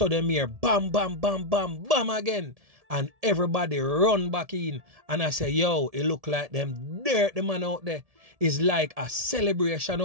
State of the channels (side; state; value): left; late; 1.7 ms